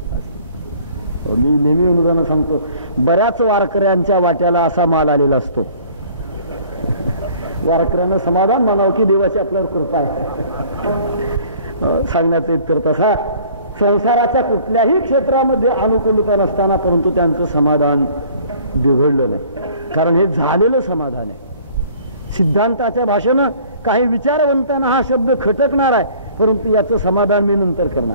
असती. मी नेहमी उदाहरण सांगतो, बऱ्याच वारकऱ्यांच्या वाट्याला असा माल आलेला असतो. वारकऱ्यांना समाधान म्हणावं की देवाची आपल्यावर कृपा आहे. सांगण्याचा इतकर तसा संसाराच्या कुठल्याही क्षेत्रामध्ये अनुकूलता नसताना परंतु त्यांचं समाधान बिघडलं नाही, कारण हे झालेलं समाधान आहे. सिद्धांताच्या भाषेनं काही विचारवंतांना हा शब्द खटकणार आहे, परंतु याचं समाधान मी नंतर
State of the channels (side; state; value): both; inverted; correlation -0.53